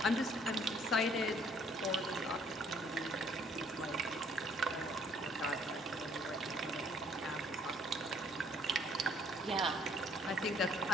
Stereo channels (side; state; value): both; normal; correlation 0.62